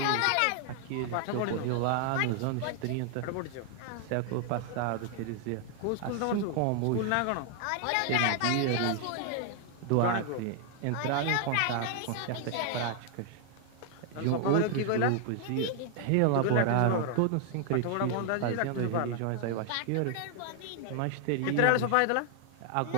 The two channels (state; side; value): different; both; correlation 0.00